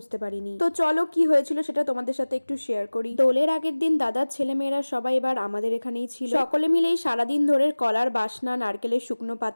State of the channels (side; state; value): both; inverted; correlation -1.00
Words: পারিনি। তো চলো কি হয়েছিল সেটা তোমাদের সাথে একটু শেয়ার করি। দোলের আগের দিন দাদার ছেলেমেয়েরা সবাই এবার আমাদের এখানেই ছিল। সকলে মিলেই সারাদিন ধরে কলার বাসনা, নারকেলের শুকনো